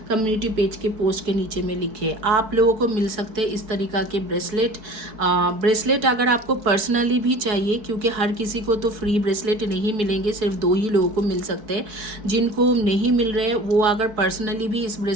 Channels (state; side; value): late; left; 4.6 ms